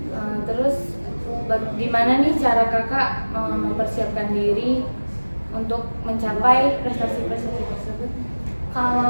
Terus gimana nih cara Kakak mempersiapkan diri untuk mencapai prestasi-prestasi tersebut?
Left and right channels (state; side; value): inverted; both; correlation -1.00